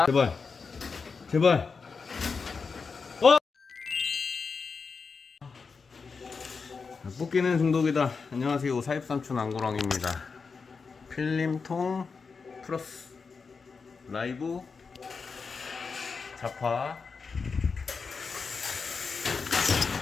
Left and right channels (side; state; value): right; quieter; 5.0 dB